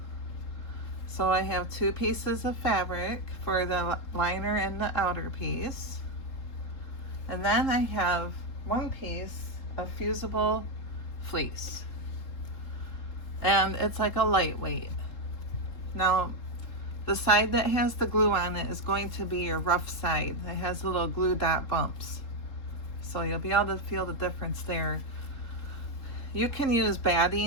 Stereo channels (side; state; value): right; late; 3.7 ms